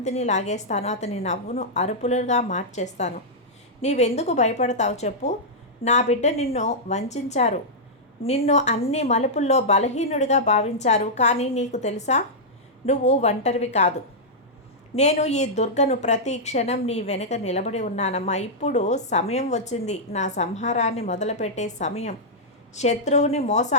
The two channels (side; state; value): both; normal; correlation -0.09